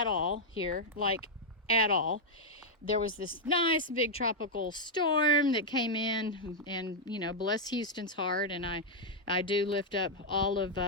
all here, like at all. There was this nice big tropical storm that came in, and you know, bless Houston's heart, and I do lift up all of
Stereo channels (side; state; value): both; normal; correlation -0.04